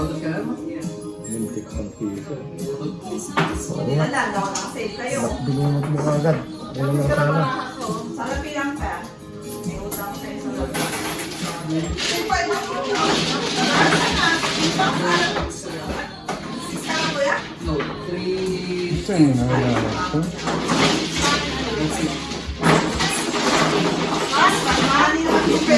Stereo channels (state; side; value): identical; both; correlation 1.00